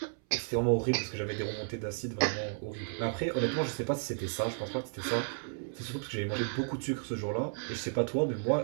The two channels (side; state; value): left; silent; 56 dB below the other